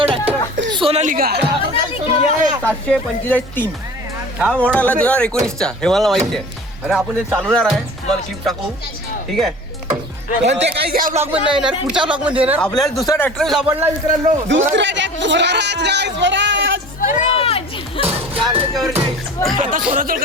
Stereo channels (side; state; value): both; normal; correlation 0.41